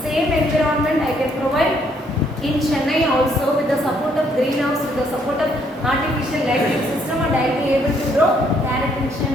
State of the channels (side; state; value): both; normal; correlation 0.69